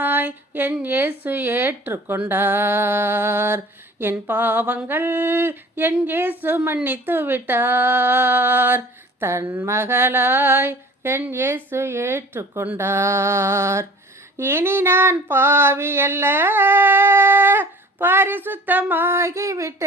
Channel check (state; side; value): normal; both; correlation 0.46